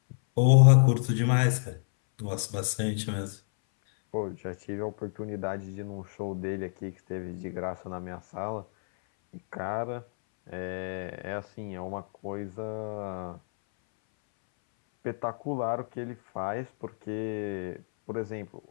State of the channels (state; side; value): silent; right; 58 dB below the other